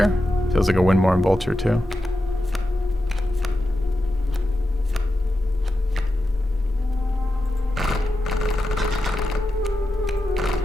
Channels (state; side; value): normal; both; correlation 0.89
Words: Feels like a win more in Vulture too.